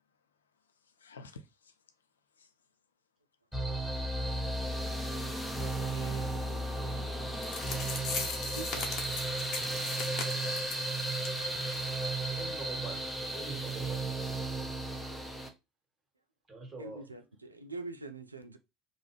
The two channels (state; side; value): normal; both; correlation 0.69